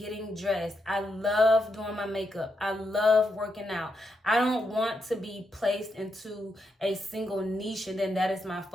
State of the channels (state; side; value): normal; both; correlation 0.82